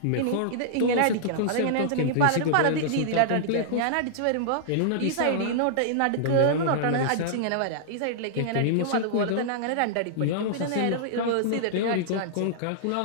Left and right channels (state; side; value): different; both; correlation -0.02